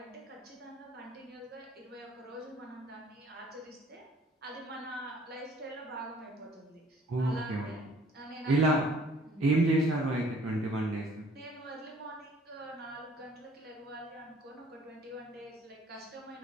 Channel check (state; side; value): normal; both; correlation 0.56